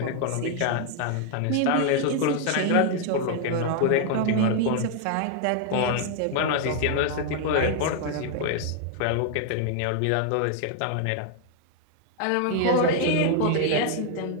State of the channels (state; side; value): different; both; correlation 0.00